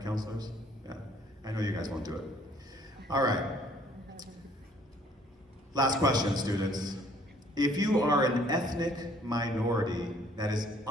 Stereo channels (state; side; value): normal; both; correlation 0.60